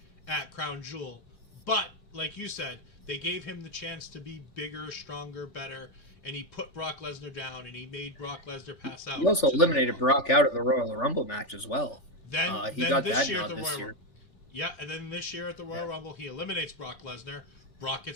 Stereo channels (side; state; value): right; late; 3.4 ms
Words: at Crown Jewel. But like you said, they gave him the chance to be bigger, stronger, better, and he put Brock Lesnar down, and he made Brock Lesnar pass out. He also eliminated Brock out of the Royal Rumble match as well. He Then got this that year nod at the this year. Yeah, and then this year at the Royal Rumble, he eliminates Brock Lesnar. Brock